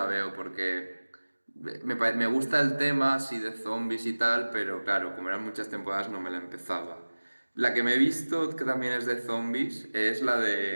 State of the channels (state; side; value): inverted; both; correlation -1.00